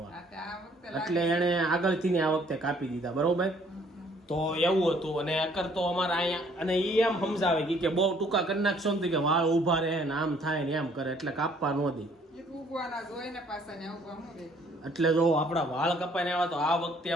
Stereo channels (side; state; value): both; normal; correlation 0.61